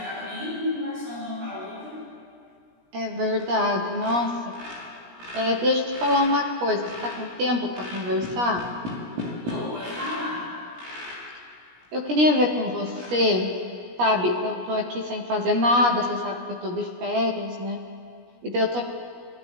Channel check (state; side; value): late; left; 17 ms